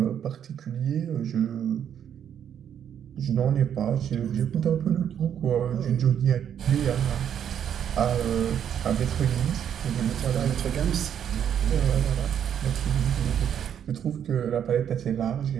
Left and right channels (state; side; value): quieter; left; 9.0 dB